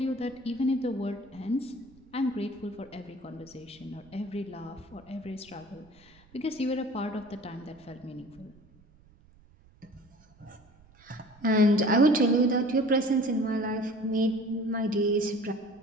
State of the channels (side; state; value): right; noise; rumble, 27 dB below the sound